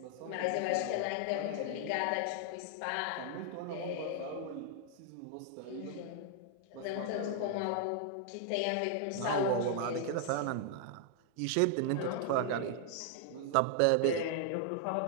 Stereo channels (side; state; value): both; different; correlation 0.00